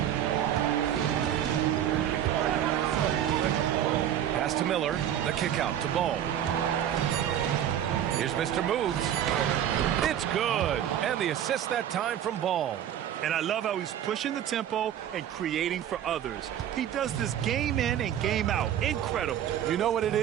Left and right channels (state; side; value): quieter; left; 10.5 dB